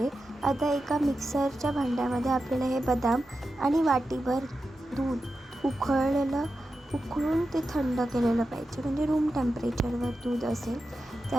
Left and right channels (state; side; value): normal; both; correlation 0.91